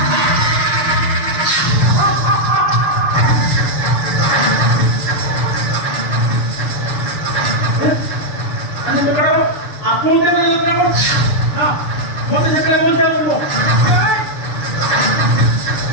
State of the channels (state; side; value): late; right; 6.8 ms